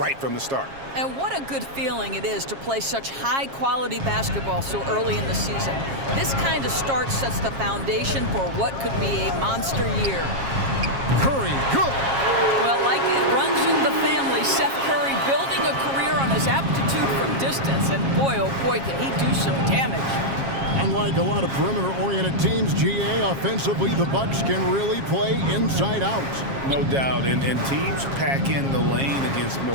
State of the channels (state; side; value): late; left; 7.4 ms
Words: from the start. And what a good feeling it is to play such high-quality basketball so early in the season. This kind of start sets the foundation for what could be a monster year. Curry, good. Well, like it runs in the family, Seth Curry building a career on his aptitude from distance. And boy, oh boy, can he do some damage. Unlike a lot of perimeter-oriented teams, GA, offensively, the Bucks can really play inside out. No doubt, and teams pack in the lane against